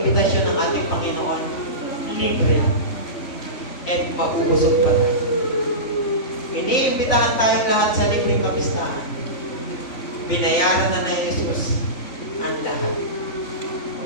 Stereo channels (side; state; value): right; late; 3.5 ms